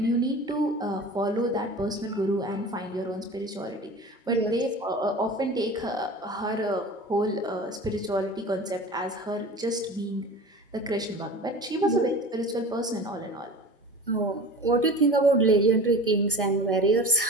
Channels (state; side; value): normal; both; correlation 0.36